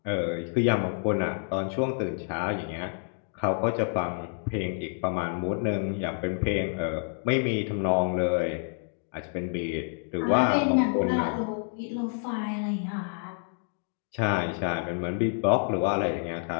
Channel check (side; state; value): right; silent; 59 dB below the other